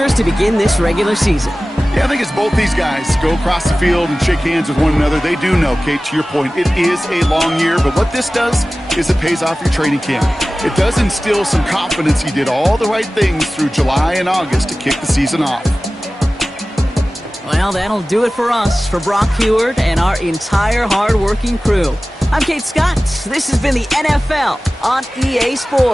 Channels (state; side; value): normal; both; correlation 0.97